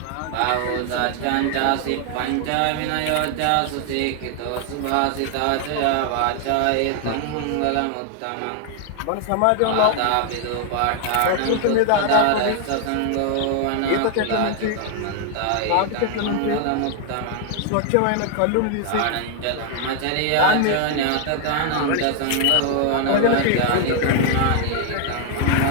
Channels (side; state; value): both; different; correlation 0.00